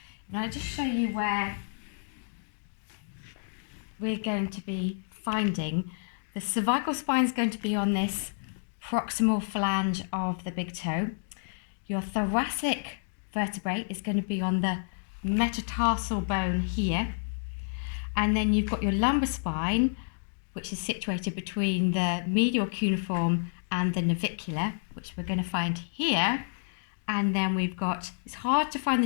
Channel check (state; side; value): silent; right; digital silence